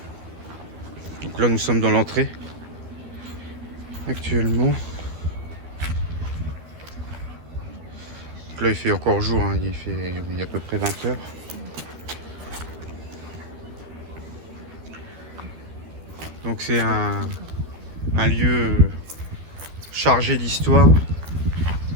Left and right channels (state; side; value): late; left; 12 ms